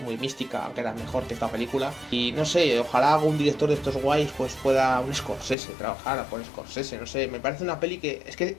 muy mística, aunque era mejor que esta película. Y no sé, ojalá algún director de estos guays pues pueda, un Scorsese, trabajar con Scorsese, no sé, me parece una peli que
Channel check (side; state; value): right; drops out; at 5.6 s